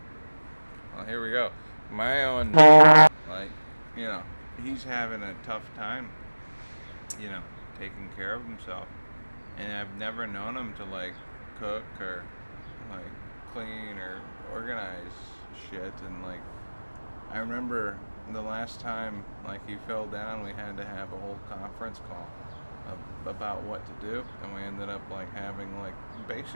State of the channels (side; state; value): both; inverted; correlation -1.00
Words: here we go. My own, he's having a tough time, taking care of himself. And I've never known him to, cook or, clean or organize shit. And, I remember the last time, he fell down, we had to have a whole conference call about what to do. And we ended up, having,